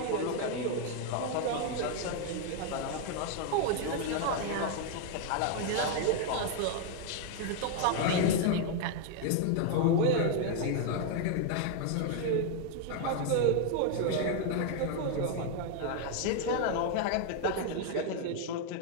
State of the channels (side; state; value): both; different; correlation 0.00